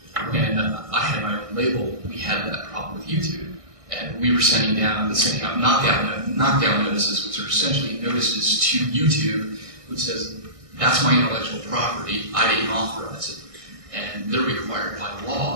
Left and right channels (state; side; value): late; left; 1.6 ms